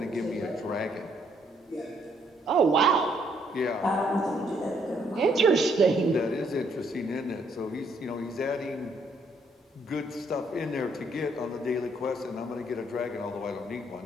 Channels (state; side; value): normal; both; correlation 0.69